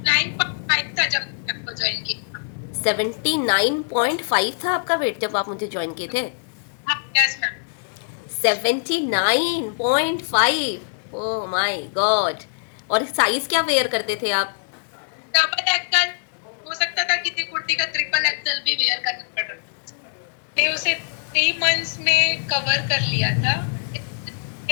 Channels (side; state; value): right; silent; 63 dB below the other